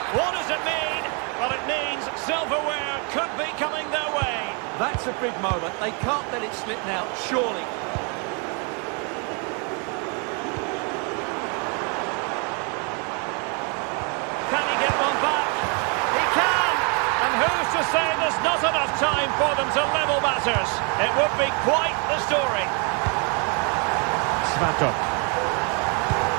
Silverware could be coming their way. That's a big moment. They can't let it slip now, surely. Can he get one back? He can! And who's to say there's not enough time for them to level matters? It would be quite the story. Svatok.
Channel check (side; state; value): left; quieter; 35.7 dB